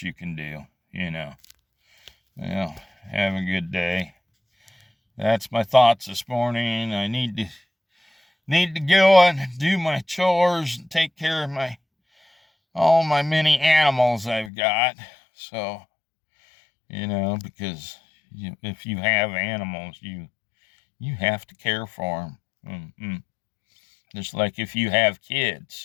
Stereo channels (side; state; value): right; drops out; at 14.5 s